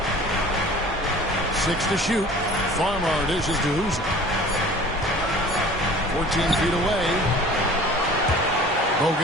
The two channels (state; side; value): normal; both; correlation 0.45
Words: 6 to shoot. Farmar dishes to Hooser. 14 feet away.